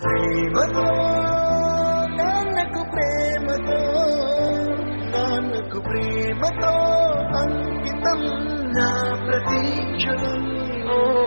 ప్రేమతో నాన్నకు ప్రేమతో నాన్నకు ప్రేమతో అంకితం నా ప్రతీక్షణం.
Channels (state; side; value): inverted; both; correlation -1.00